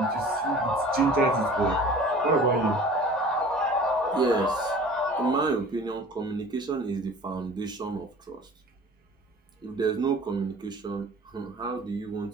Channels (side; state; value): both; normal; correlation 0.44